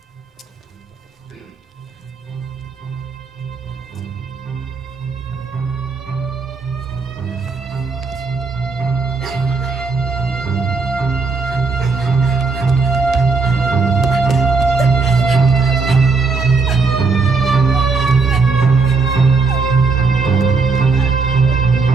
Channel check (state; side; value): quieter; left; 4.6 dB